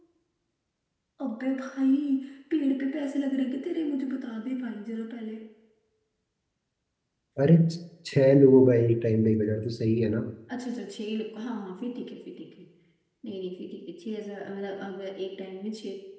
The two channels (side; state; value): both; identical; correlation 1.00